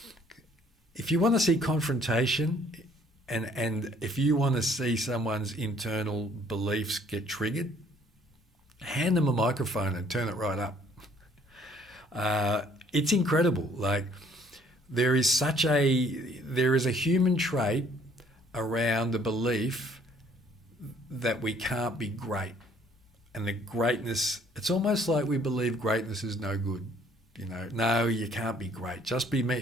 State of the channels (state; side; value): normal; both; correlation 0.60